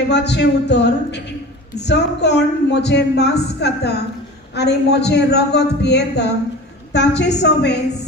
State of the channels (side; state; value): both; normal; correlation 0.36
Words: उतर जो कोण म्हजे मांस खाता आनी म्हजे रगत पियेता ताचे सोबे